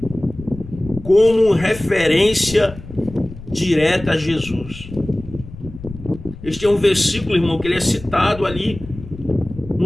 como referência direta a Jesus. Este é um versículo, irmão, que ele é citado ali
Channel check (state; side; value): noise; left; rumble, 15 dB below the sound